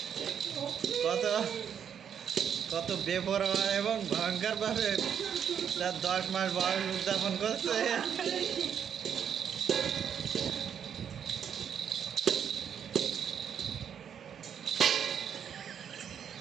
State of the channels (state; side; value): quieter; left; 8.2 dB